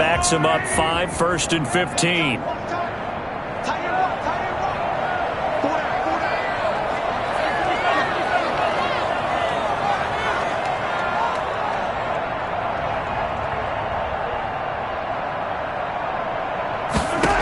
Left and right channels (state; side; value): identical; both; correlation 1.00